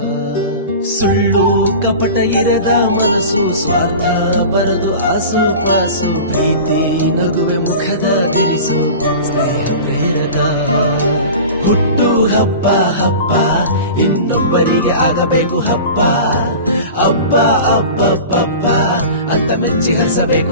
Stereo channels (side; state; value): both; inverted; correlation -0.36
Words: ಸುಳ್ಳು ಕಪಟ ಇರದ ಮನಸ್ಸು ಸ್ವಾರ್ಥ ಬರದು ಆಸು ಪಾಸು ಪ್ರೀತಿ ನಗುವೆ ಮುಖದ ತಿರಿಸು ಸ್ನೇಹ ಪ್ರೇರಕ. ಹುಟ್ಟು ಹಬ್ಬ ಹಬ್ಬ ಇನ್ನೊಬ್ಬರಿಗೆ ಆಗಬೇಕು ಹಬ್ಬ ಹಬ್ಬ ಹಬ್ಬ ಅಂತ ಮೆಚ್ಚಿ